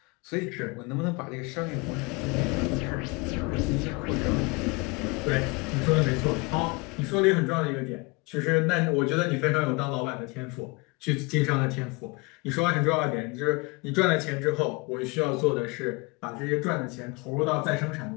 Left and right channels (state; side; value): quieter; right; 27.1 dB